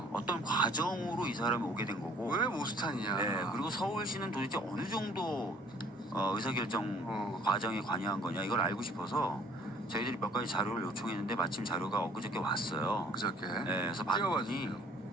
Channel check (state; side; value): normal; both; correlation 0.56